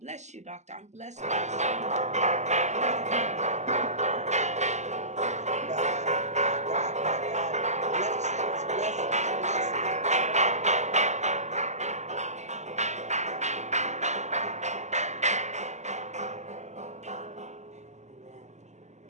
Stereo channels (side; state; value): left; late; 0.33 ms